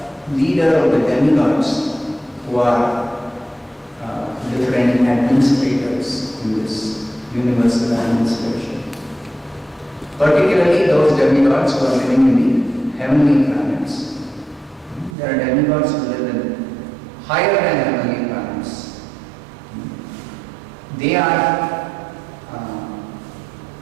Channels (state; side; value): drops out; left; at 15.2 s